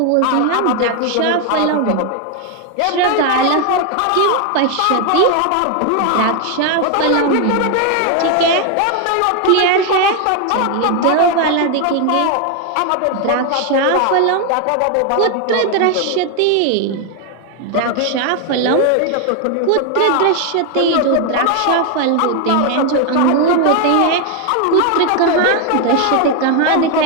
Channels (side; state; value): both; different; correlation 0.01